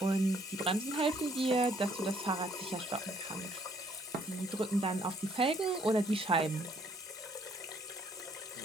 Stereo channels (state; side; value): normal; both; correlation 0.65